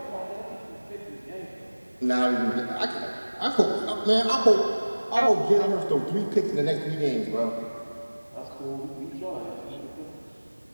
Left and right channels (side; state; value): both; inverted; correlation -1.00